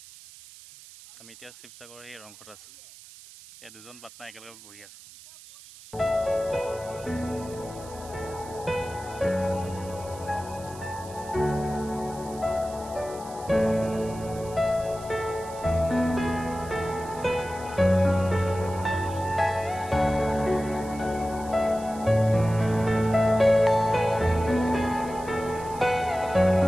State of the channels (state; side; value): noise; right; hiss, 19 dB below the sound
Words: আমি এতিয়া শিৱসাগৰৰ সেই ৰংঘৰত আছোঁ। ইয়াত দুজন পাৰ্টনাৰ একেলগে বহি আছোঁ।